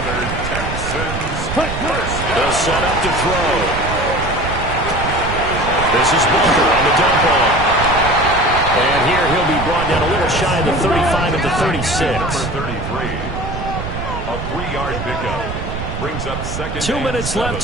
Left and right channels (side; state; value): right; noise; rumble, 6 dB below the sound